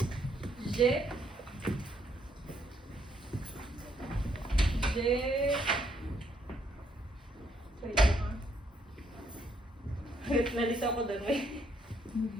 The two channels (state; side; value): normal; both; correlation 0.72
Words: je, wait lang ah. Nalito ako doon, wait.